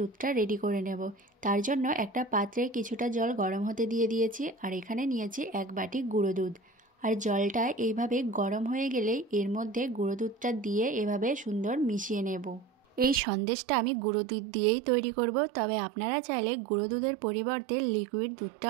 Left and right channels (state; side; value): drops out; left; at 13.2 s